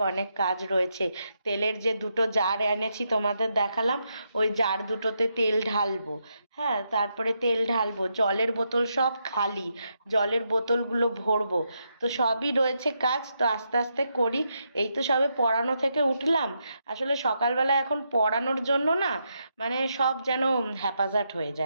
অনেক কাজ রয়েছে। তেলের যে দুটো জার এনেছি তোমাদের দেখালাম, ওই জার দুটোতে তেল ঢালবো। হ্যাঁ, তারপরে তেল ঢালবো, জলের বোতল সব খালি, জলের বোতলগুলো ভরবো। তো সবই রয়েছে কাজ, তো আস্তে আস্তে করি। এই তো সবে পড়ানো থেকে উঠলাম। আসলে সকালবেলা এখন পড়ানোর জন্য না, মানে সব যেন হ্যাপাজার্ট হয়ে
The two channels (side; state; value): both; inverted; correlation -0.81